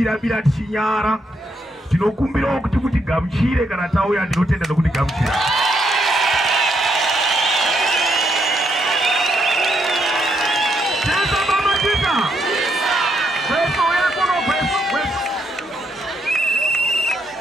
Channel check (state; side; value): normal; both; correlation 0.77